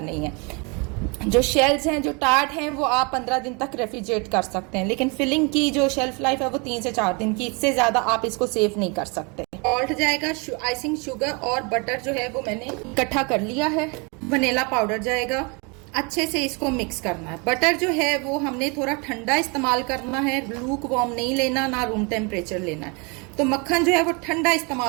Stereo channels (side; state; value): left; quieter; 31.3 dB